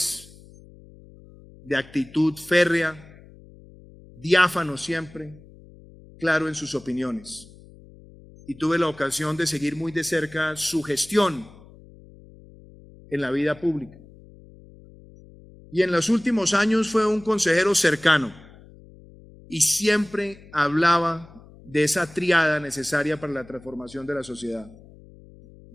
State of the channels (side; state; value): left; noise; hum, 22 dB below the sound